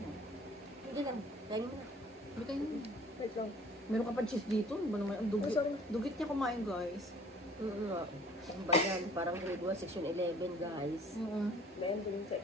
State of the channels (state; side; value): normal; both; correlation 0.53